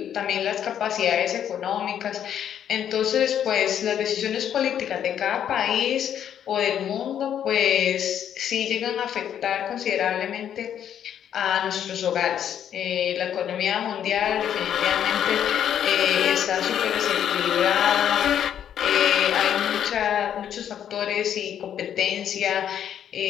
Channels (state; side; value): quieter; right; 9.6 dB